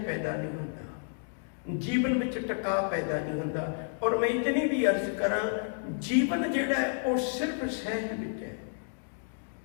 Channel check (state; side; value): silent; right; digital silence